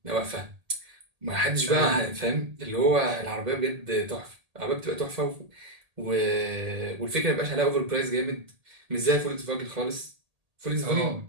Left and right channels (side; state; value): left; late; 1.8 ms